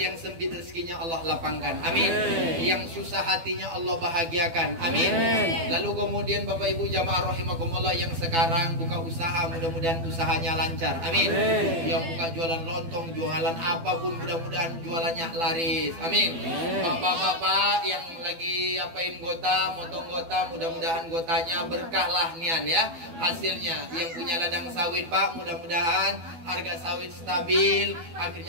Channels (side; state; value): left; late; 12 ms